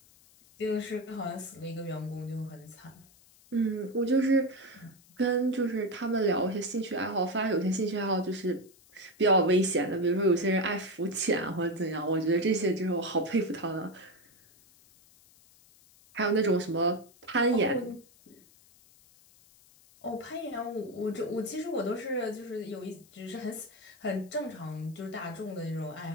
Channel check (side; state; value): left; noise; hiss, 27 dB below the sound